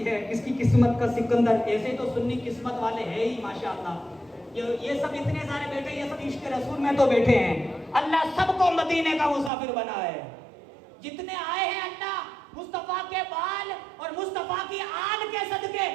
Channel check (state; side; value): drops out; left; at 9.5 s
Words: है, किसकी किस्मत का सिकंदर। ऐसे तो सुन्नी किस्मत वाले हैं ही माशाअल्लाह। ये सब इतने सारे बैठे, ये सब इश्क रसूल में तो बैठे हैं। अल्लाह सबको मदीने का मुसाफिर बना है। जितने आए हैं अल्लाह मुस्तफा के बाल और मुस्तफा की आल के सदके